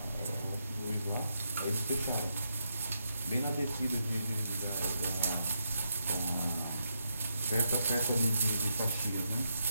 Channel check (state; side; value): inverted; both; correlation -0.81